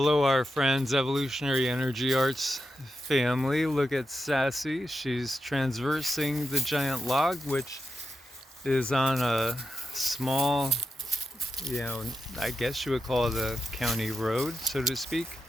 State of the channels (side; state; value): both; normal; correlation 0.86